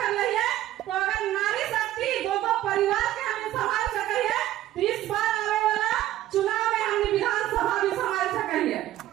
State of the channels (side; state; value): left; quieter; 13.8 dB